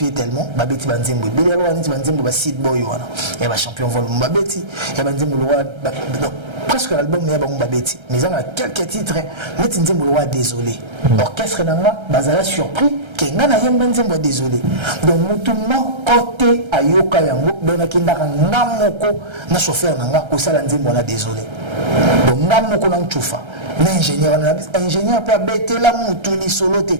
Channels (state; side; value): late; left; 1.3 ms